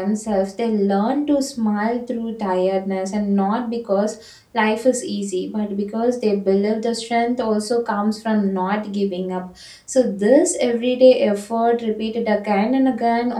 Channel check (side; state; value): both; identical; correlation 1.00